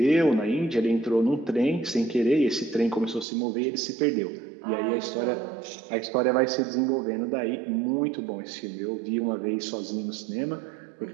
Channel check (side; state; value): left; drops out; at 3.2 s